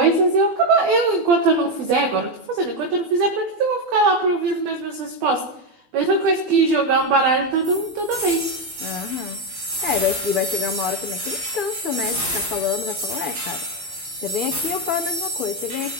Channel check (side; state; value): left; late; 12 ms